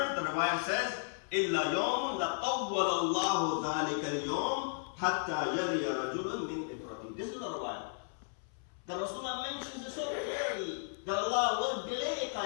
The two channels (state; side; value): silent; right; 55 dB below the other